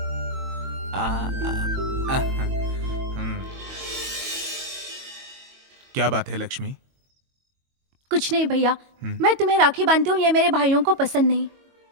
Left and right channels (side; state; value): left; late; 22 ms